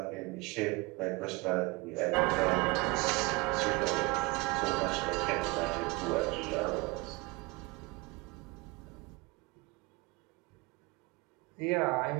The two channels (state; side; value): quieter; left; 25.7 dB